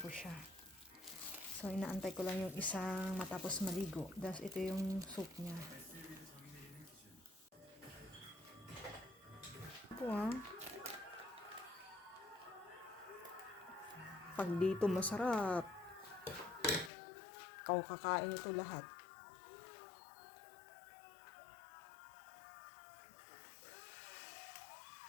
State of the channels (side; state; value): right; drops out; at 16.9 s